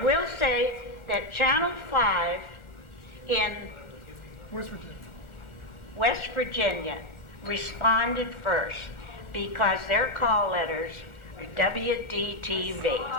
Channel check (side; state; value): right; late; 1.4 ms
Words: say that Channel 5 in West Virginia responded first because their call letters are WDTV.